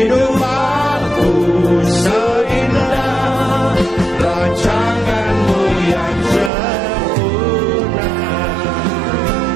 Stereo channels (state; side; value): drops out; left; at 6.5 s